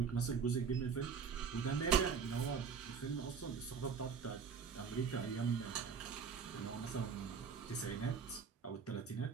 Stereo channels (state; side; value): quieter; left; 6.2 dB